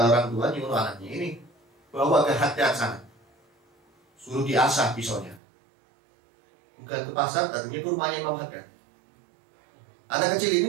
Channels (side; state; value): left; drops out; at 5.4 s